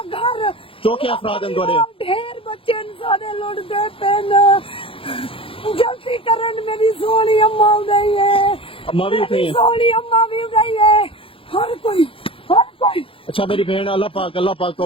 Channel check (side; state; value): right; late; 0.26 ms